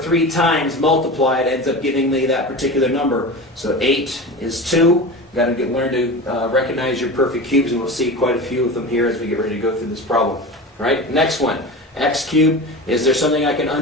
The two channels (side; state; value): both; normal; correlation 0.29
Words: times multiplied ends up giving me that particular number. So 8 is 2. You've got to learn to recognize your perfect cubes, and we'll see quite a few of them here as we get ready to go through this problem. All right, next one. X cubed, is there something I can